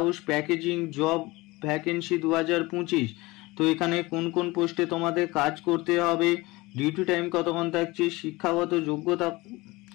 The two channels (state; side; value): quieter; right; 21.8 dB